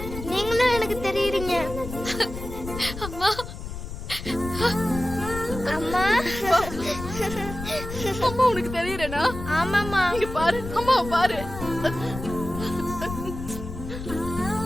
நீங்களும் எனக்கு தெரியுறீங்க. அம்மா அம்மா அம்மா உனக்கு தெரியறனா? ஆமாம்மா. இங்க பாரு, அம்மா பாரு.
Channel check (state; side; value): noise; left; rumble, 9 dB below the sound